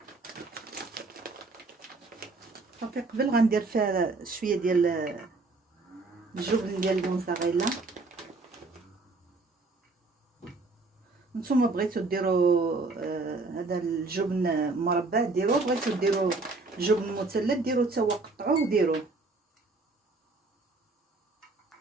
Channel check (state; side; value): quieter; left; 3.6 dB